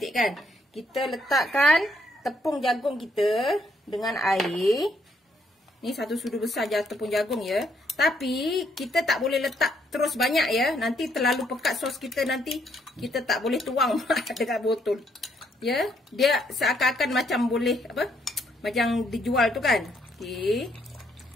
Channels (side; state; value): both; normal; correlation 0.71